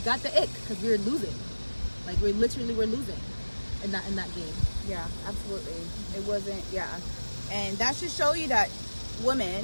ick, because we were losing. Like we're losing in that game. Yeah, absolutely. It wasn't. Yeah, and that should show you that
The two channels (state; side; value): inverted; both; correlation -1.00